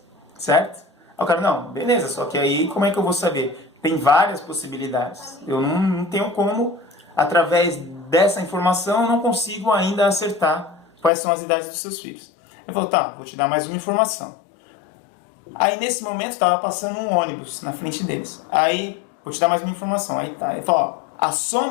certo? Aí o cara, não, beleza, só que aí como é que eu vou saber? Tem várias possibilidades. Eu não tenho como, através dessa informação, eu não consigo ainda acertar quais são as idades dos seus filhos. Ele falou, vou te dar mais uma informação. Aí nesse momento estava passando um ônibus na frente deles. Aí, vou te dar mais uma informação. Aí tá, ele falou, a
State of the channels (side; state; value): right; drops out; at 11.1 s